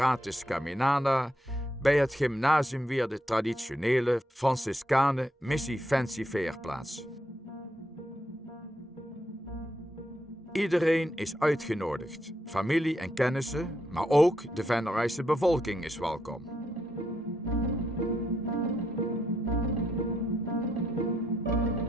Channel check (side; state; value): both; normal; correlation 0.79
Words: Caminada, bij het gymnasium weer de traditionele Franciscanen Missie Fancy Fair plaats. Iedereen is uitgenodigd, familie en kennissen, maar ook de Vennerijse bevolking is welkom.